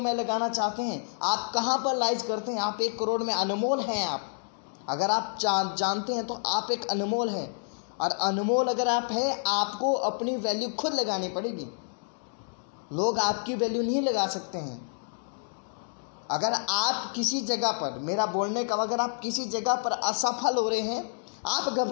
लगाना चाहते हैं, आप कहाँ पर लाइज करते हैं। आप 1 करोड़ में अनमोल हैं। आप अगर आप जानते हैं तो आप एक अनमोल हैं, और अनमोल अगर आप हैं, आपको अपनी वैल्यू खुद लगानी पड़ेगी। लोग आपकी वैल्यू नहीं लगा सकते हैं। अगर आप किसी जगह पर, मेरा बोलने का, अगर आप किसी जगह पर असफल हो रहे हैं, आप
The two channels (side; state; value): right; silent; digital silence